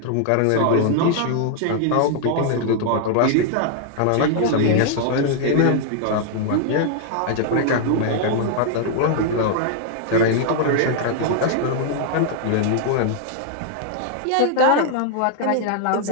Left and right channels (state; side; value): different; both; correlation 0.00